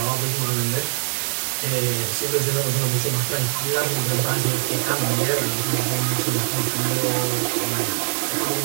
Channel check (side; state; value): left; silent; digital silence